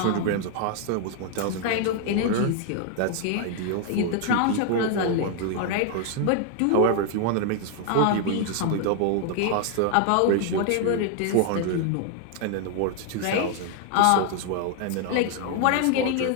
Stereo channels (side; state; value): both; different; correlation 0.00